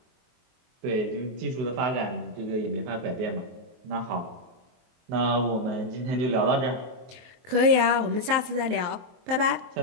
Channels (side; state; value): left; late; 23 ms